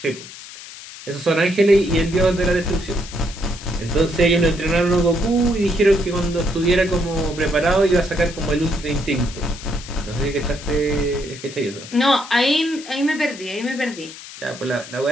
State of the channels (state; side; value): noise; left; hiss, 15 dB below the sound